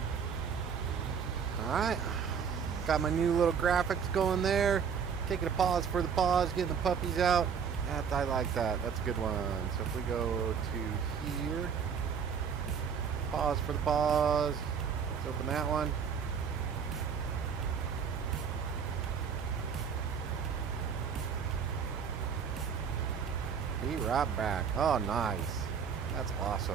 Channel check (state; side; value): quieter; left; 6.9 dB